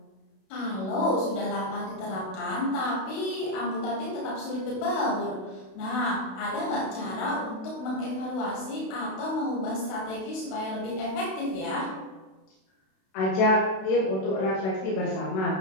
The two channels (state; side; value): late; right; 32 ms